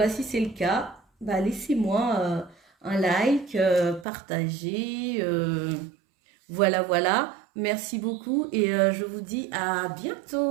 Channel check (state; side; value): drops out; left; at 4.0 s